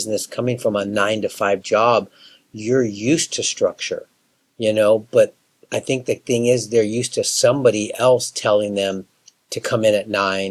coming from a 9 to 5 job, you're used to structure. But I think the thing is they're used to somebody else telling them to come in at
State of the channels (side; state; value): both; identical; correlation 1.00